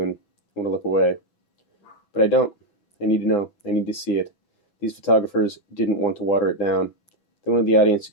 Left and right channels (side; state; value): right; late; 6.1 ms